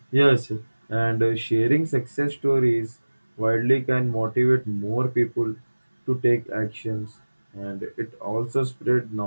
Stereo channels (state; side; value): inverted; both; correlation -1.00